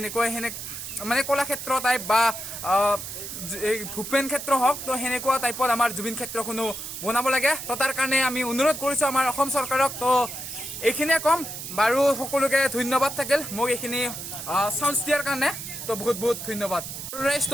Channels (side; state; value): right; noise; hiss, 8 dB below the sound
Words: মানে কলাক্ষেত্ৰ টাইপ বা ভূপেন ক্ষেত্ৰ হওক তো সেনেকুৱা টাইপত আমাৰ জুবিন ক্ষেত্ৰখনো বনাব লাগে তো তাৰ কাৰণে আমি অনুৰোধ কৰিছো আমাৰ অসম চৰকাৰক তো এইখিনিয়ে কম বাৰু সকলোকে ধন্যবাদ থাকিল মোক এইখিনি চান্স দিয়াৰ কাৰণে তো বহুত ধন্যবাদ